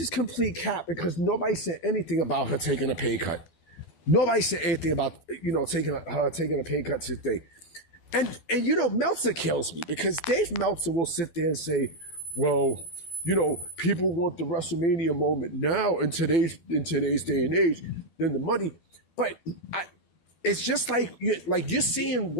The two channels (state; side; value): late; right; 12 ms